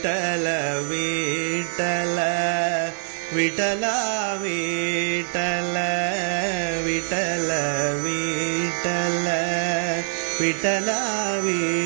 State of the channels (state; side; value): silent; left; digital silence